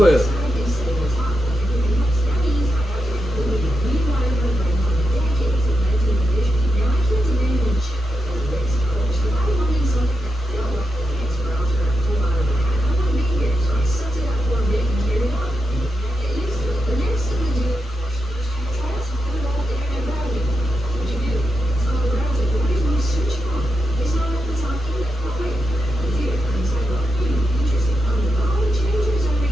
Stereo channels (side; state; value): both; normal; correlation 0.86